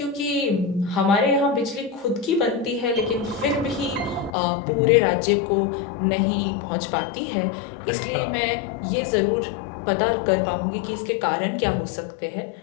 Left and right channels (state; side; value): drops out; right; at 4.3 s